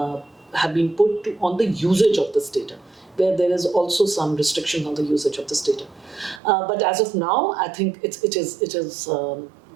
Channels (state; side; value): drops out; left; at 6.4 s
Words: been put on the usage of this data, where there is also some restriction on the usage of this data. But as of now, I think it is